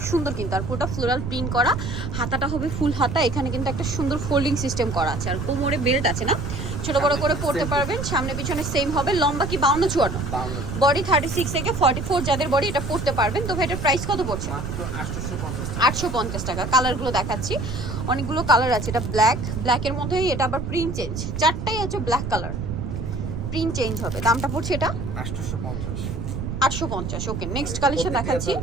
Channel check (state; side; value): noise; right; rumble, 4 dB below the sound